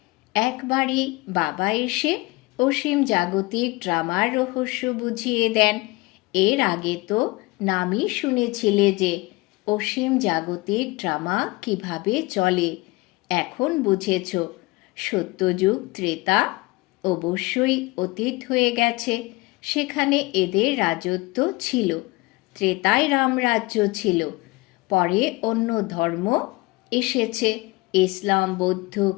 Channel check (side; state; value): right; quieter; 22.7 dB